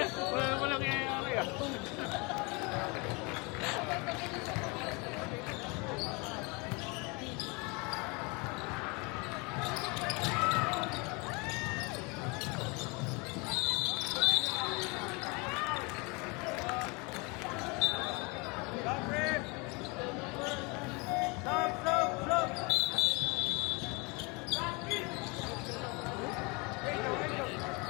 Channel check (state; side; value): quieter; right; 28.8 dB